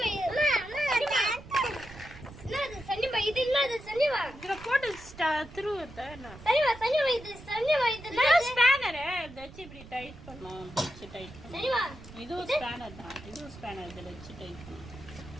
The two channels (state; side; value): noise; right; rumble, 17 dB below the sound